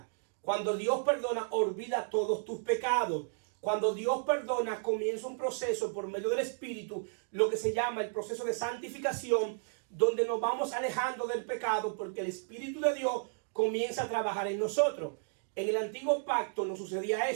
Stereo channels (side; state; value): left; silent; digital silence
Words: Cuando Dios perdona, olvida todos tus pecados. Cuando Dios perdona, comienza un proceso por medio del Espíritu, lo que se llama el proceso de santificación, donde nos vamos alejando del pecado, porque el Espíritu de Dios comienza a trabajar en nosotros. En el antiguo pacto no sucedía